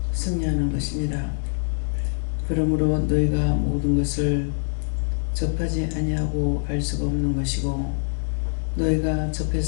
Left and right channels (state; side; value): silent; right; digital silence